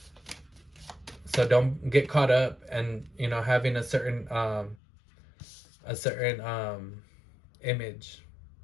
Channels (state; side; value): drops out; right; at 4.8 s